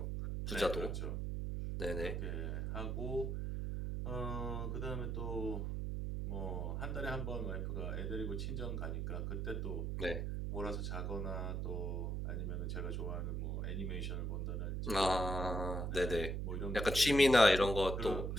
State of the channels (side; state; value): right; noise; hum, 1 dB below the sound